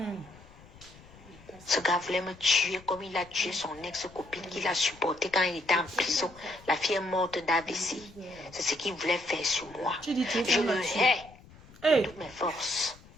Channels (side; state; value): left; noise; rumble, 22 dB below the sound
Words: Ce gars voulait me tuer comme il a tué son ex-copine qu'il a supporté quand il était en prison. La fille est morte d'AVC. C'est ce qu'il voulait faire sur moi. Je le hais de toutes mes forces.